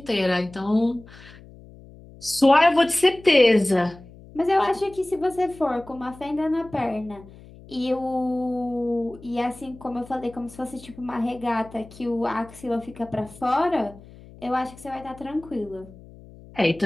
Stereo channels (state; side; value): noise; left; hum, 20 dB below the sound